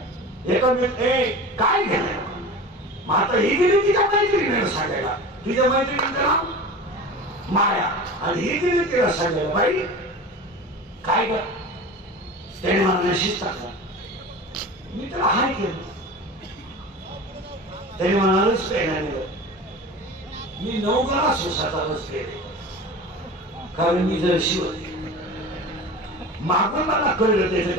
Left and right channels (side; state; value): both; normal; correlation 0.34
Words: एका काय घेणार? मग आता ही गेली तिच्या मैत्रिणीला सांगायला, तुझ्या मैत्रिणीचं नाव माया, आणि ही गेली तिला सांगायला, बाई काय कर? त्याने मला मेसेज टाकला, मी त्याला हाय केलं. त्याने म्हणालच पेनाने मी 9 ग्लास उसाचा रस केले, कारण मी जर शिवले. मागून मला कळलं